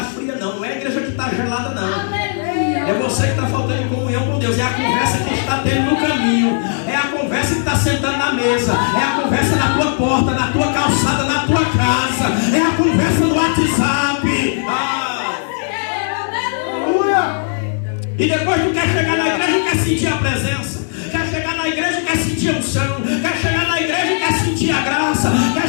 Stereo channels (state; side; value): silent; right; digital silence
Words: fria, não. Não é a igreja que está gelada, não. É você que está faltando em comunhão com Deus. É a conversa que está tendo no caminho. É a conversa que está sentando na mesa. É a conversa na tua porta, na tua calçada, na tua casa. É a conversa no WhatsApp. E depois tu quer chegar na igreja e quer sentir a presença. Quer chegar na igreja e quer sentir a unção. Quer chegar na igreja e quer sentir a graça. Quer